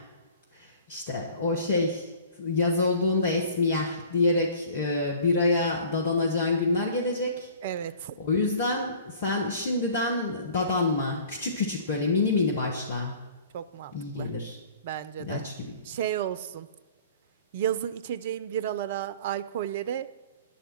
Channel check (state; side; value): inverted; both; correlation -0.47